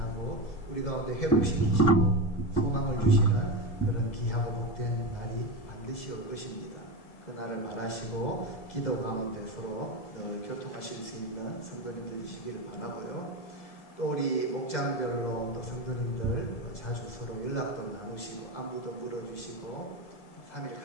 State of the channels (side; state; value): right; late; 2.0 ms